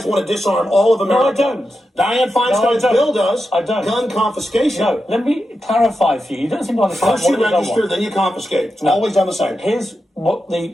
me- want to disarm all of America. No, I don't. Dianne Feinstein's don't. bill does. I don't. Gun confiscation. No, let me clarify for you. You don't seem to understand First you what it is I register, want. then you confiscate. It's always done the same. Here's what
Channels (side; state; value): both; normal; correlation 0.89